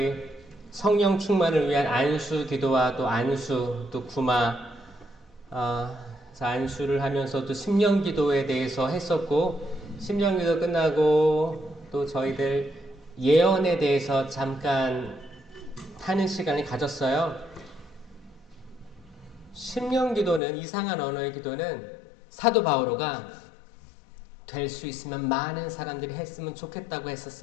성령 충만을 위한 안수 기도와 또 안수, 또 구마, 안수를 하면서 또 심령 기도에 대해서 했었고, 심령 기도 끝나고 또 저희들 예언에 대해서 잠깐 하는 시간을 가졌어요. 심령 기도는, 이상한 언어의 기도는 사도 바오로가 될 수 있으면 많은 사람들이 했으면 좋겠다고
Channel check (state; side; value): drops out; right; at 20.4 s